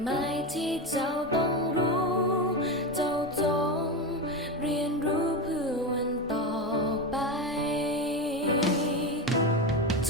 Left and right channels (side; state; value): both; normal; correlation 0.17